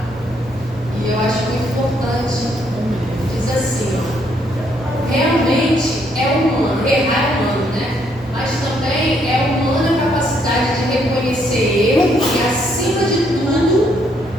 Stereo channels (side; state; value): both; normal; correlation 0.71